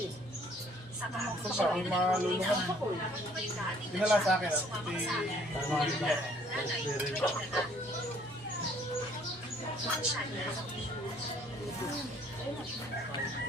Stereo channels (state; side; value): normal; both; correlation 0.60